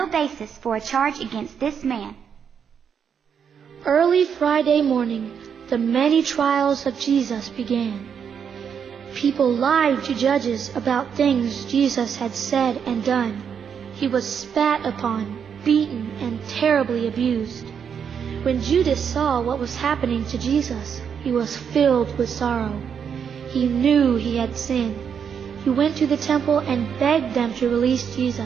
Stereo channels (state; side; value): quieter; left; 7.4 dB